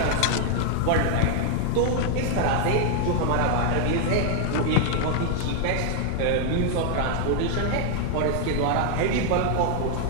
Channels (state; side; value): different; both; correlation 0.00